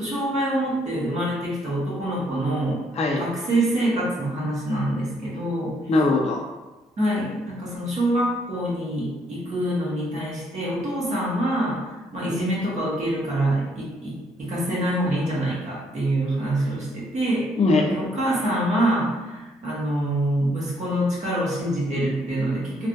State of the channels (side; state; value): both; normal; correlation 0.70